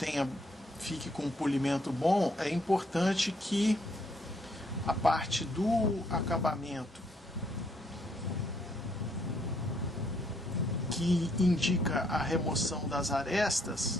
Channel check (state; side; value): normal; both; correlation 0.70